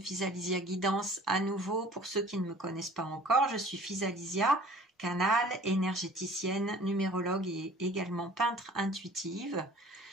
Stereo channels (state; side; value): normal; both; correlation 0.49